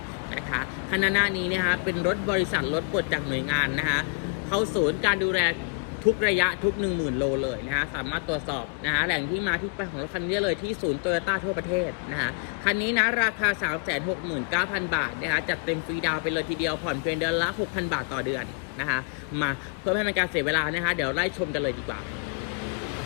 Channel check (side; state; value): right; quieter; 36.4 dB